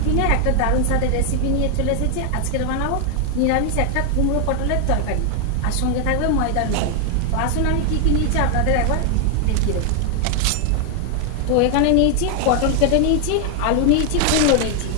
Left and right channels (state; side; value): different; both; correlation 0.00